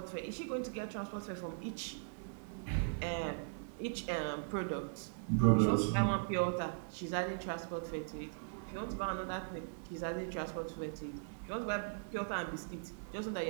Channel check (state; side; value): silent; left; digital silence